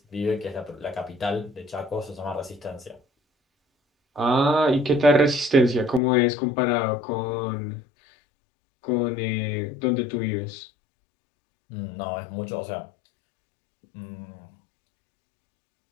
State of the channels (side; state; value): right; drops out; at 6.0 s